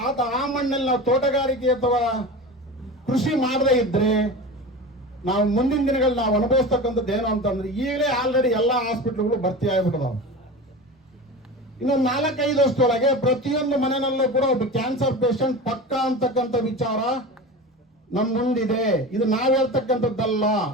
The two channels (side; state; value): both; normal; correlation 0.30